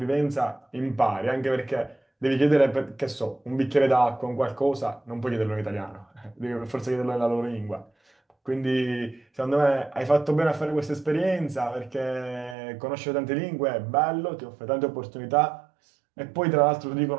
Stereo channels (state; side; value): drops out; left; at 12.6 s